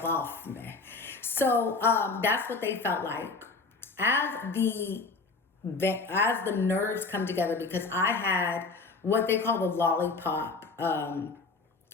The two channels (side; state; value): right; quieter; 4.1 dB